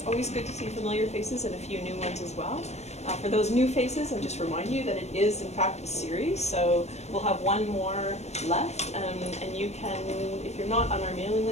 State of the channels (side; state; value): right; late; 0.32 ms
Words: always good to see familiar faces and a few new ones as well. For those new faces, I'll just remind you that it is in fact a series, so we'll have one more left, and you can, if you're not on our mailing